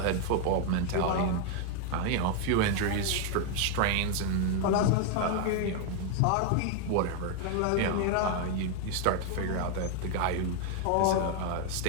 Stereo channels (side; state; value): both; different; correlation 0.00